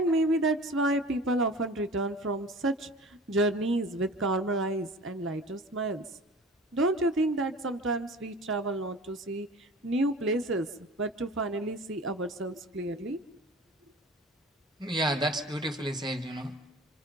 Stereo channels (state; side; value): normal; both; correlation 0.40